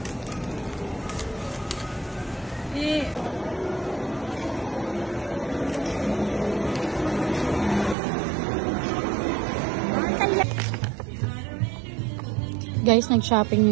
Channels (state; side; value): drops out; left; at 8.0 s